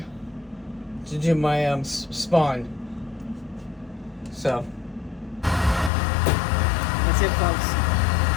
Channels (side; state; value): right; drops out; at 5.9 s